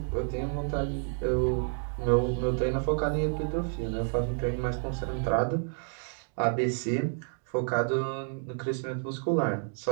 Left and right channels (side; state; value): left; silent; 58 dB below the other